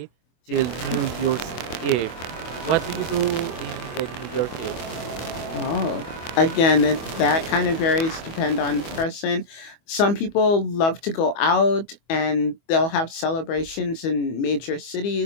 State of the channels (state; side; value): late; right; 25 ms